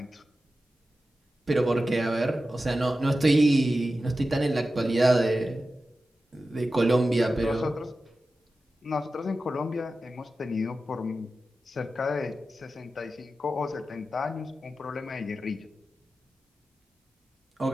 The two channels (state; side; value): normal; both; correlation 0.93